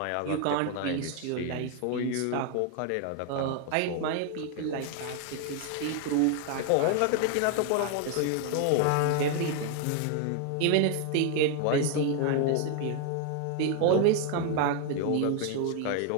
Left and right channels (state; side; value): different; both; correlation 0.00